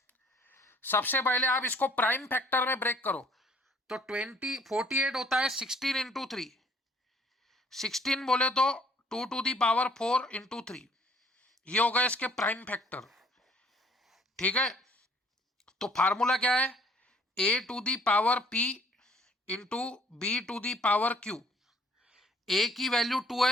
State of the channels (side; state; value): both; normal; correlation 0.59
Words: सबसे पहले आप इसको प्राइम फैक्टर में ब्रेक करो, तो 48 होता है 16 × 3, 16 बोले तो 2⁴ 4 × 3, ये होगा इसके प्राइम फैक्टर। ठीक है, तो फार्मूला क्या है? a⁴p into b⁴q। a की वैल्यू 2